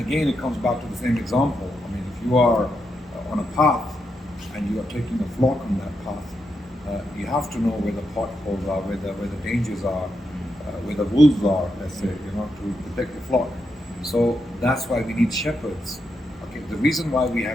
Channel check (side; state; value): both; normal; correlation 0.84